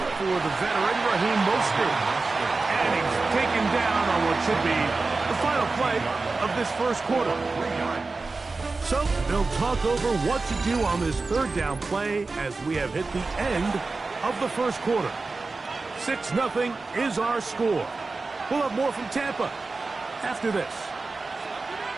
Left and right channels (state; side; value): quieter; left; 3.8 dB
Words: for the veteran Raheem Mostert. And he's taken down on what should be the final play of this first quarter. So they'll talk over what to do on this 3rd down play as we have hit the end of the first quarter. 6-0 is our score. We'll have more from Tampa after this.